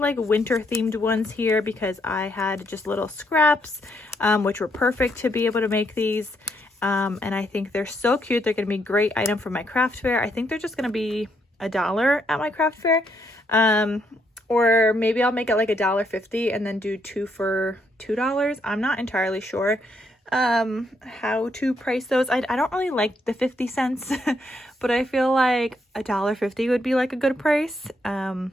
winter themed ones here because I had just little scraps, which were perfect to be able to make these. And I think they're so cute. They're going to be a great item for my craft fair. I think they're just going to be $1 at my craft fair. Or maybe I'll make it like $1.50 and then do 2 for $2. I'm not entirely sure how to price those. I don't really like the 50 cents, but I feel like $1.50 would be like a good price,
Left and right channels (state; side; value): normal; both; correlation 0.75